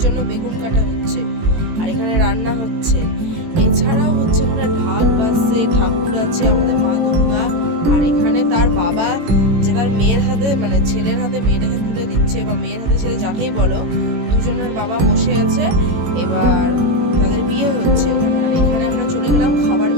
জন্য বেগুন কাটা হচ্ছে, আর এখানে রান্না হচ্ছে। এছাড়াও হচ্ছে এখানে ঢাক বাজছে, ঠাকুর আছে, আমাদের মা দুর্গা। আর এখানে তার বাবা যে তার মেয়ের হাতে, মানে ছেলের হাতে মেয়েটাকে তুলে দিচ্ছে, বা মেয়ের হাতে ছেলে যাকেই বলো, দুজনের বাবা বসে আছে, এবার তাদের বিয়ে হচ্ছে। আর এখানে আমরা চলে গেলাম খাবার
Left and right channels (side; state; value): left; late; 18 ms